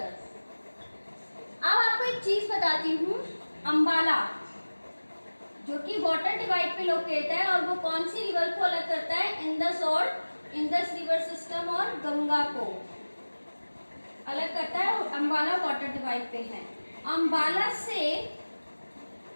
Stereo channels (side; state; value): both; inverted; correlation -1.00